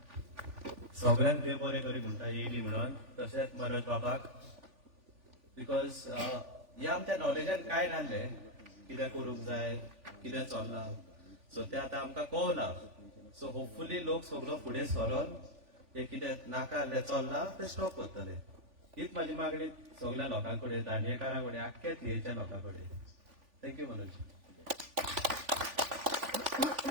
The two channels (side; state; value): left; late; 3.5 ms